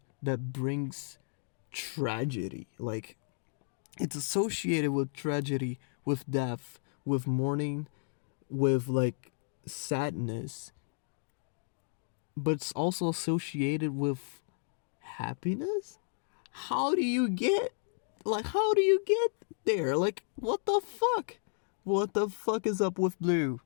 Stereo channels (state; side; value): silent; right; digital silence